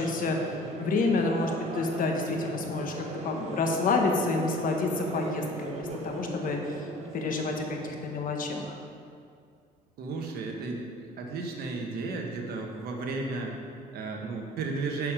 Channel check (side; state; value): both; normal; correlation 0.47